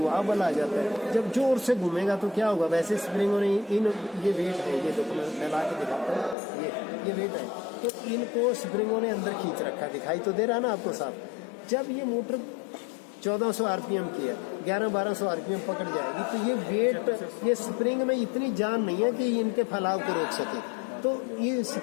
बल आ जाता है। जब जोर से घूमेगा तो क्या होगा, वैसे स्प्रिंगों ने इन ये वेट है, ये देखो मैं फैला के दिखाता हूँ, ये वेट है, तो इनको स्प्रिंगों ने अंदर खींच रखा, दिखाई तो दे रहा ना आपको साफ। जब ये मोटर 1400 आरपीएम की है, 1100-1200 आरपीएम पकड़ जाएगी, तो ये वेट, ये स्प्रिंग में इतनी जान नहीं है कि इनके फैलाव को रोक सके, तो ये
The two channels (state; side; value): drops out; right; at 6.4 s